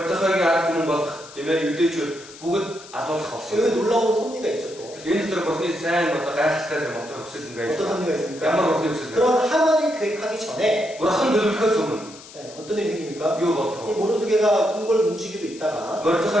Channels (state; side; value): noise; left; hiss, 18 dB below the sound